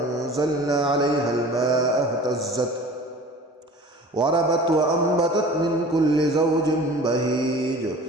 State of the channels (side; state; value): both; normal; correlation 0.42